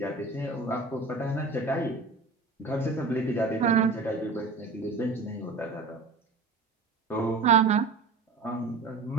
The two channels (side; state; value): left; quieter; 4.0 dB